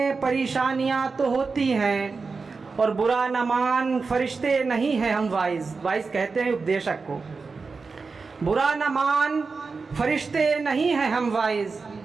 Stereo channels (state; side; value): quieter; left; 4.5 dB